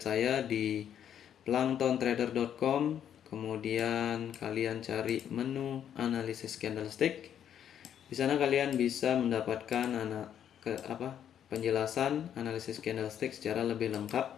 saya di planktontrader.com. Kemudian kalian cari menu analisis candlestick. Di sana kalian bisa mendapatkan penjelasan analisis candlestick secara lebih lengkap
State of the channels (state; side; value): quieter; right; 9.5 dB